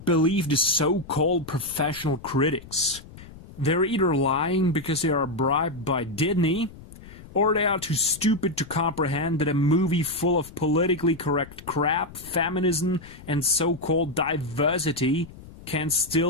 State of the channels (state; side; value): noise; left; rumble, 18 dB below the sound